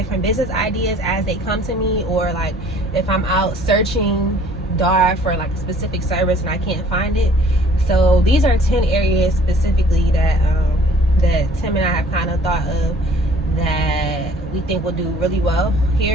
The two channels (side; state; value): both; normal; correlation 0.54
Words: business ideas as they come to me, or like if I'm out searching Dar for like a specific service and I can't find it. So these are 10 areas specifically that that Tim and I have kind of thought of that we think will do really well